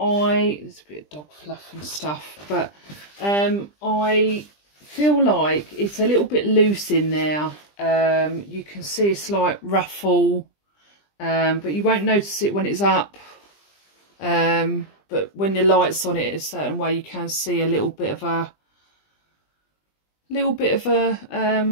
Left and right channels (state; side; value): late; right; 20 ms